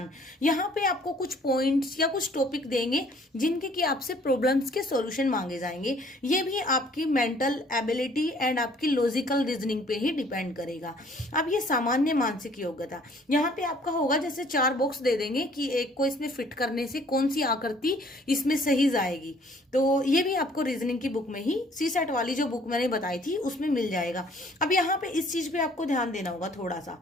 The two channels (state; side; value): normal; both; correlation 0.58